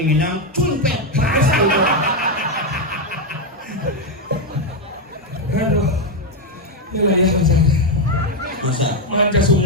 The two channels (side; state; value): both; normal; correlation 0.04